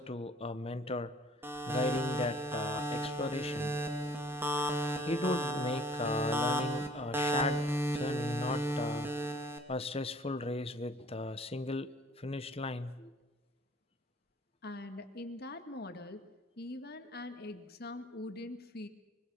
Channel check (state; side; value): normal; both; correlation 0.55